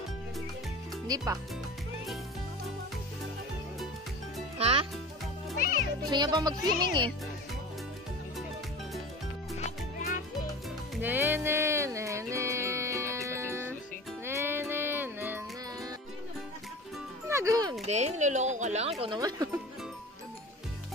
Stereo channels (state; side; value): normal; both; correlation 0.35